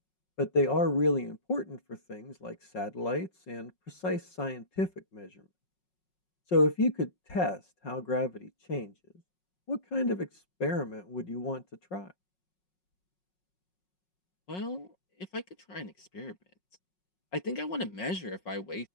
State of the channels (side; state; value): right; late; 5.5 ms